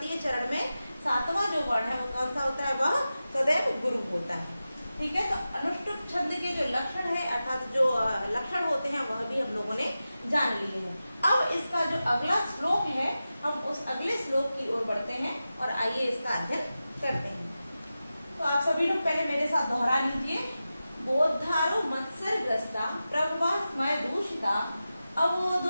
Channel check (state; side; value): inverted; both; correlation -0.93